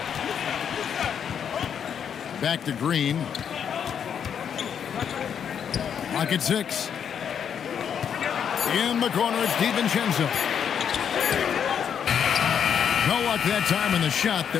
Back to Green. Clock at 6. In the corner, it's DiVincenzo. No luck that time in the shot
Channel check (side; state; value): right; quieter; 8.0 dB